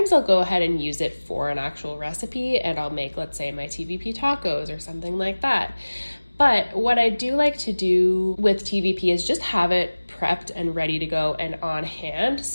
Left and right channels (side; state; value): both; inverted; correlation -1.00